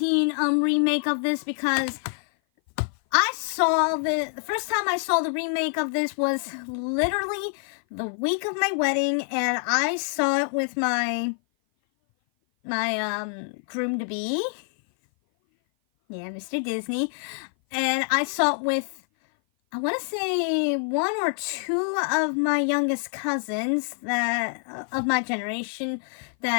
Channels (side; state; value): right; silent; 56 dB below the other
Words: remake of this because I saw the first time I saw the remake of this was literally the week of my wedding, and I saw it with my groom-to-be. Yeah, Mr. Disney. And I saw it with, I want to say, one or two of my youngest cousins that of my generation